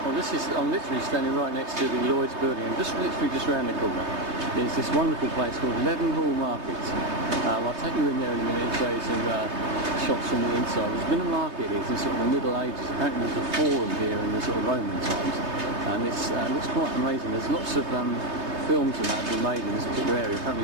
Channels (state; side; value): late; left; 3.2 ms